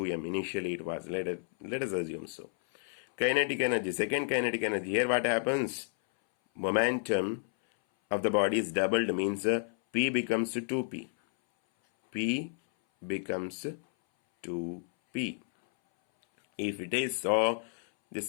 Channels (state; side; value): silent; right; 57 dB below the other